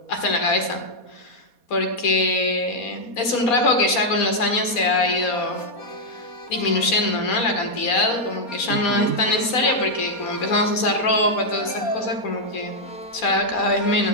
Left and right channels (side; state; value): right; late; 4.2 ms